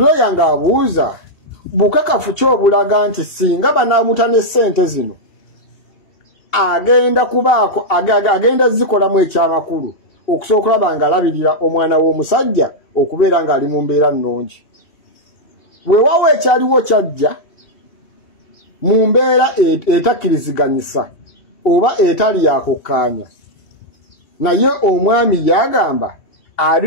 ng'abuuza bukakafu kyobulaga nti singa banaamutane ssente zino agenda zikolamu ekyamakulu okusobola okulaba nga alabirira omwana w'omusajja okubeera ng'ali mu mbeera nnungi. Weewaawo ekyaliwo kyajja mu mbeera etakkiriziganyisa oba etali yakukkaanya naye omwami yagamba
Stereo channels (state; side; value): late; right; 2.7 ms